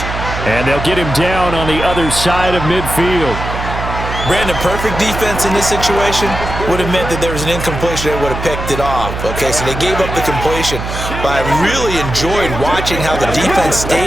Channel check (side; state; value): right; noise; hum, 6 dB below the sound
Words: And they'll get him down on the other side of midfield. Brandon, perfect defense in this situation would have meant that there was an incompletion that would have picked it off. Okay, so they gave up the completion. But I really enjoyed watching how the defense